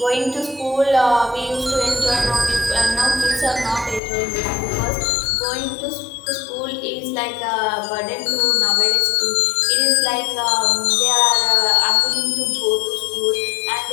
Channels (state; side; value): drops out; right; at 4.0 s